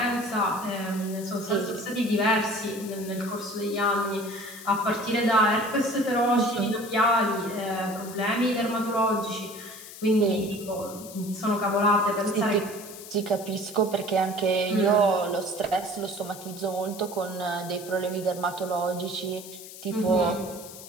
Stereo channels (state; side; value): noise; left; hiss, 15 dB below the sound